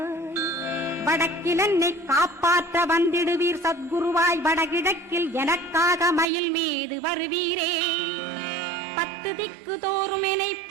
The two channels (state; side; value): drops out; left; at 6.2 s